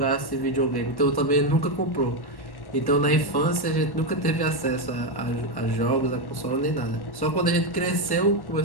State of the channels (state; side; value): late; right; 1.1 ms